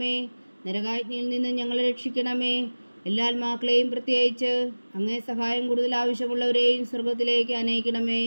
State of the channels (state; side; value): inverted; both; correlation -1.00